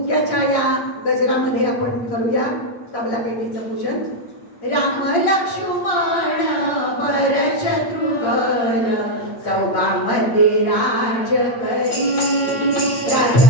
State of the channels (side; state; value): right; late; 8.6 ms